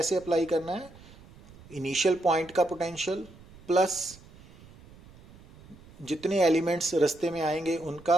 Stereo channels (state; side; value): noise; right; rumble, 22 dB below the sound